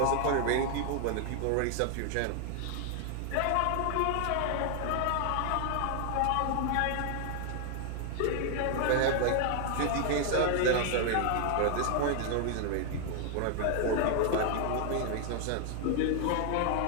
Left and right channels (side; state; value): both; different; correlation 0.00